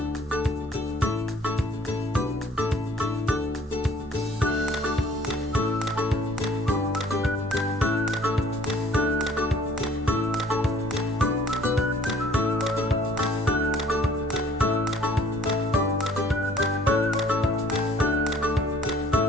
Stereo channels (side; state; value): both; normal; correlation 0.56